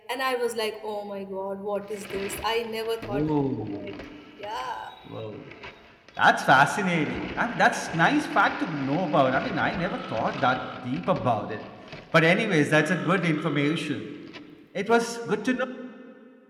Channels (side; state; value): both; identical; correlation 1.00